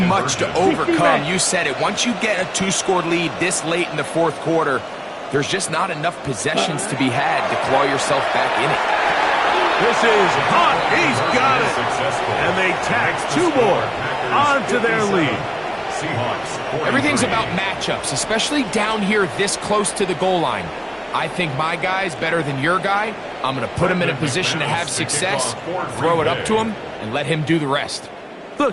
to overcome. You said it. Once you get a 2-score lead this late in the fourth quarter, there's just not enough possessions to be had to claw yourself back in it. This is hot. He's got it. And they tax 2 more onto their lead. Everything's about matchups, especially down here this close to the goal line. I think my guy's better than your guy. I'm going to put him in a position to have success, throw it up to him, and let him do the rest. The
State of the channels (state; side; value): identical; both; correlation 1.00